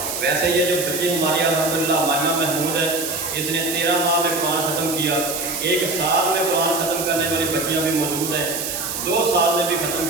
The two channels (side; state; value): right; noise; hiss, 4 dB below the sound